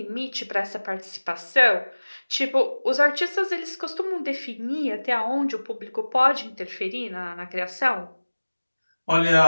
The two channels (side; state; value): both; inverted; correlation -1.00